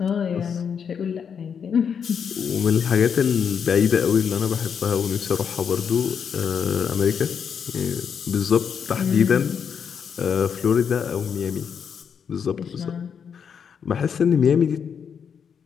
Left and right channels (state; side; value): quieter; right; 7.1 dB